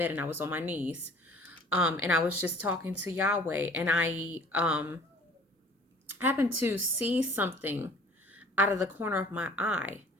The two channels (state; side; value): normal; both; correlation 0.49